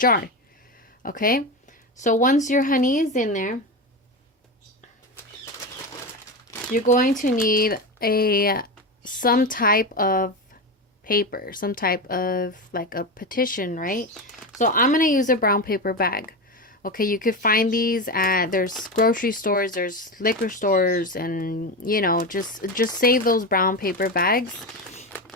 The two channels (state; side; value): normal; both; correlation 0.19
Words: Okay, so once your honey is in there, you're going to need some type of paper, some type of like a petition, right? So I'm going to use a brown paper bag. Okay, you could find these there's grocery stores, there's liquor stores, and you know, just save those brown paper bags.